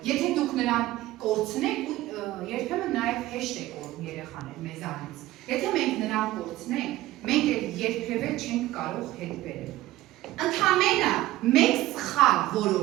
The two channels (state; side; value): quieter; left; 16.4 dB